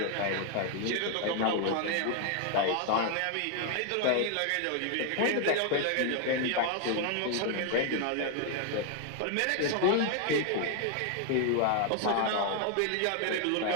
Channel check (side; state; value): both; different; correlation 0.00